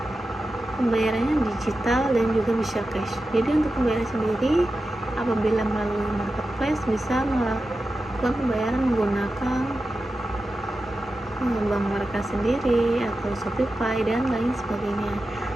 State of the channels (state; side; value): normal; both; correlation 0.92